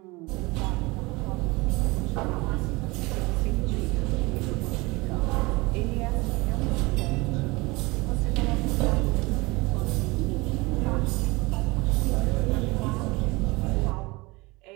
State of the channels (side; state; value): left; quieter; 23.6 dB